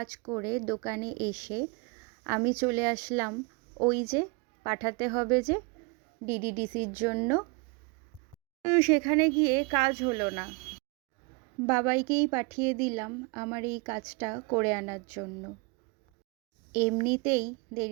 করে দোকানে এসে আমি চলে আসলাম ওই যে পাঠাতে হবে যে ডিডিডিসির জন্য। সেখানে গিয়ে কাজ হলো না, বাবাইকেই পাঠিয়ে দিলাম আমার এই কাজটা করে আনার জন্য। এমনিতেই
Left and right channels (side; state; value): left; quieter; 30.2 dB